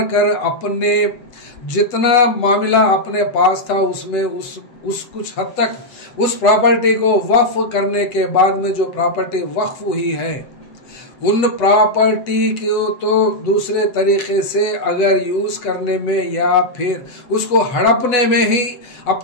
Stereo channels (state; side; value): late; right; 7.7 ms